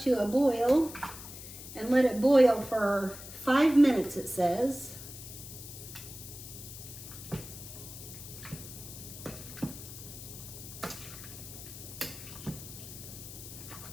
a boil and let it boil for 5 minutes, it says.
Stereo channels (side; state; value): left; noise; hiss, 13 dB below the sound